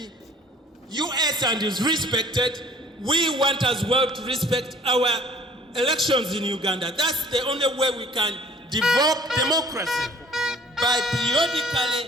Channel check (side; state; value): both; normal; correlation 0.53